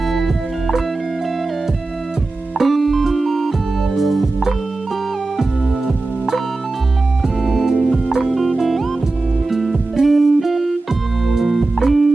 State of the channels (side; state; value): left; quieter; 3.3 dB